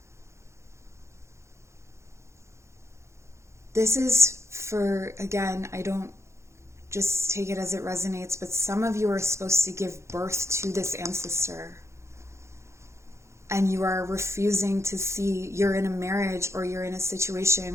This is for, again, I don't just take it as it resonates, but some of you are supposed to give birth to this ancestor. And you are refusing to see, you're in a marriage or you're in a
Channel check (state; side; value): late; left; 0.14 ms